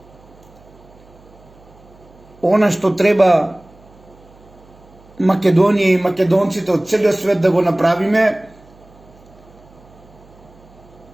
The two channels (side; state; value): right; noise; hum, 26 dB below the sound